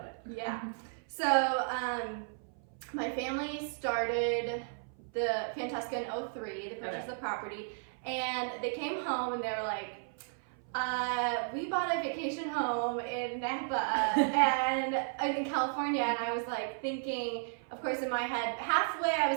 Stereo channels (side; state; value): left; silent; 55 dB below the other